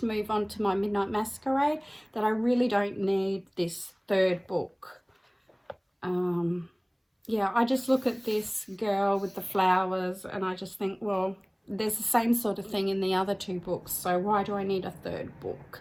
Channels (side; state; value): both; identical; correlation 1.00